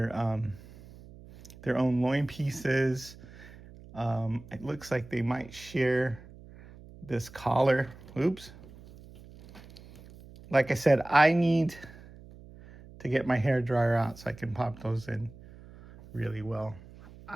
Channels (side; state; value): right; noise; hum, 19 dB below the sound